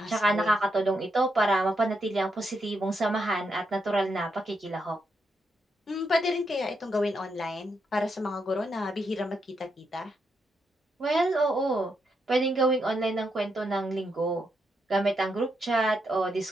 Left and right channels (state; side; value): normal; both; correlation 0.81